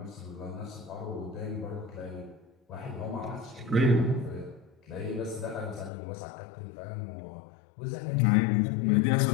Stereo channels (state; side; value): drops out; right; at 5.9 s